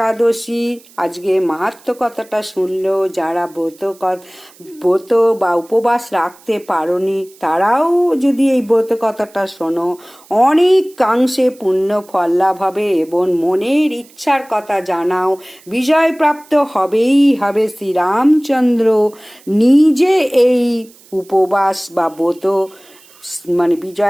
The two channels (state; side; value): noise; right; hiss, 26 dB below the sound